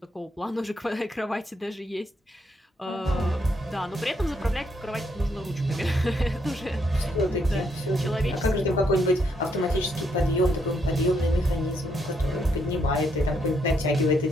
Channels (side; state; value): both; normal; correlation 0.75